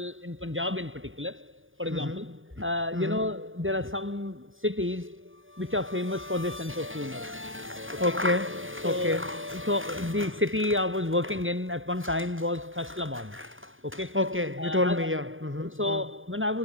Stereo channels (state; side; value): late; left; 0.58 ms